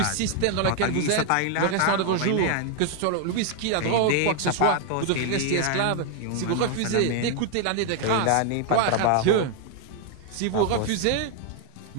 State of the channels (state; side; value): different; both; correlation 0.01